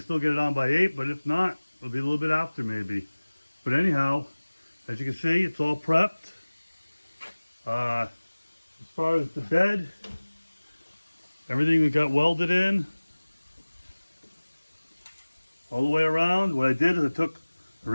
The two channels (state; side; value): inverted; both; correlation -1.00